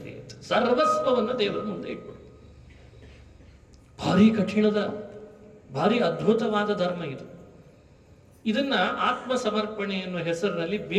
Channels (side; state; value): both; identical; correlation 1.00